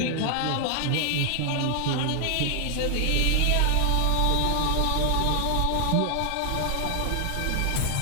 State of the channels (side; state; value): both; different; correlation 0.00